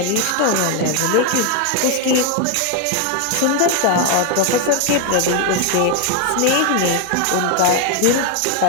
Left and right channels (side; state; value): both; different; correlation 0.01